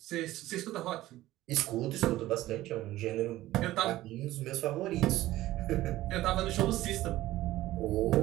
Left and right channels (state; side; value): quieter; left; 15.9 dB